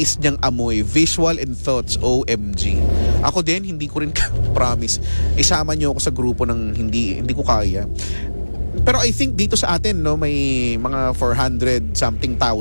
niyang amoy, visual and thoughts, OMG. Ako din, hindi ko rin promise. Isama niyo ako sa grupo ng hindi ko kaya. Pero I think dito sa atin, may mga 400 something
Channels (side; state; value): both; inverted; correlation -1.00